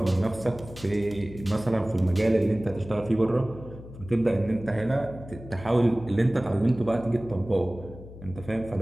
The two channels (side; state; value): left; noise; hum, 15 dB below the sound